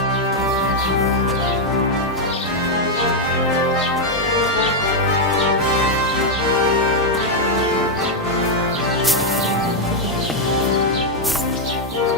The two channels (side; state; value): both; normal; correlation 0.00